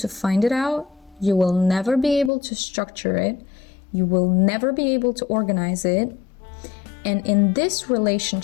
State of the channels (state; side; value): drops out; right; at 2.3 s